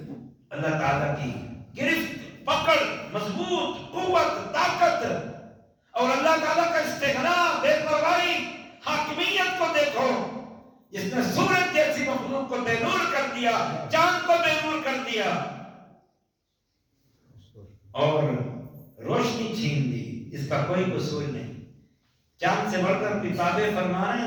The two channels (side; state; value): both; identical; correlation 1.00